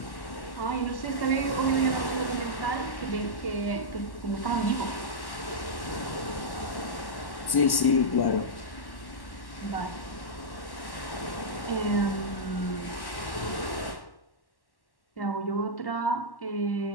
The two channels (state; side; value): late; right; 1.1 ms